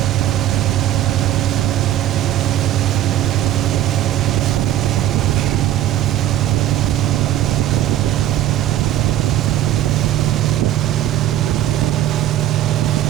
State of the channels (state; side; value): quieter; left; 12.6 dB